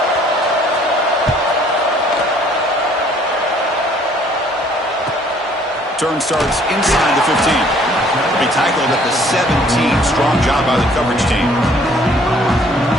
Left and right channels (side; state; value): both; normal; correlation 0.59